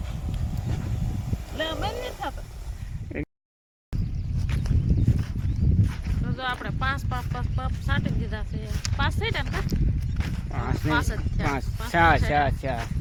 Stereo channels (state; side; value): identical; both; correlation 1.00